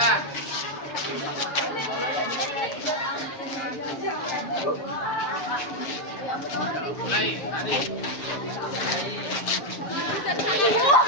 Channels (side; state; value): right; late; 7.1 ms